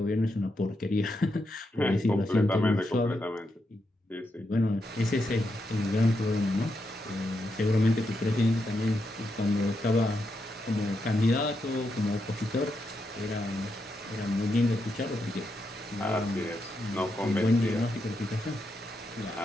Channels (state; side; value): normal; both; correlation 0.83